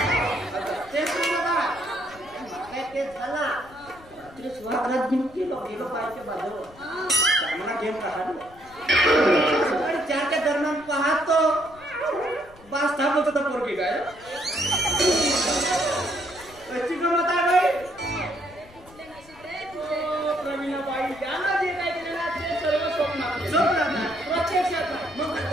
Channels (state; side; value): noise; left; rumble, 23 dB below the sound